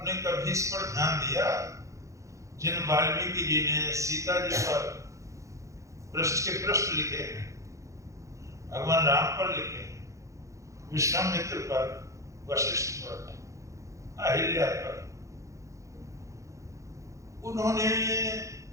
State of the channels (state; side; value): late; left; 0.15 ms